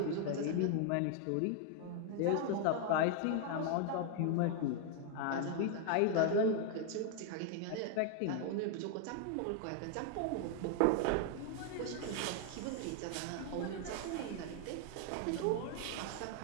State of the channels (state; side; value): different; both; correlation 0.00